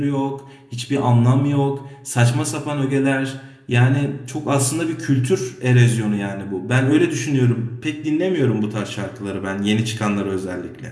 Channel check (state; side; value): identical; both; correlation 1.00